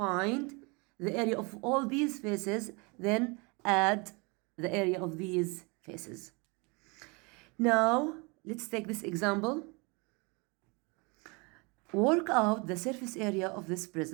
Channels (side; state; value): left; quieter; 29.5 dB